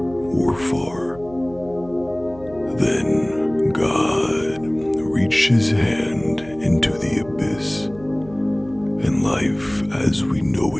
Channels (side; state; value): right; noise; hum, 20 dB below the sound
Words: far. Then God reached his hand into the abyss, and life as we know